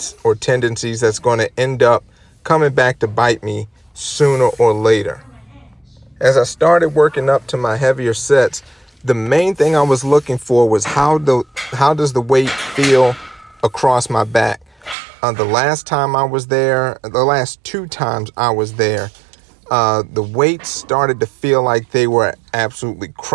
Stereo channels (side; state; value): left; drops out; at 15.0 s